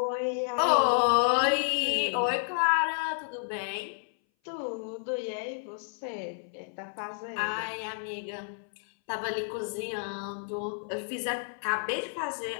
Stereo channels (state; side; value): silent; right; 57 dB below the other